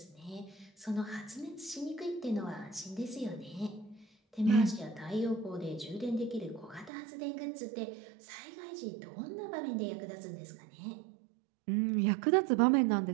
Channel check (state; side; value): drops out; left; at 6.9 s